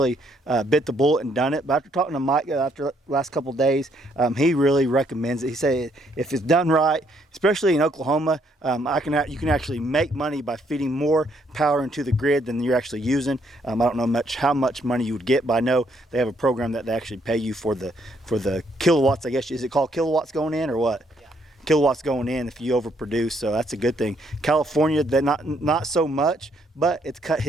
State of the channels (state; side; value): normal; both; correlation 0.71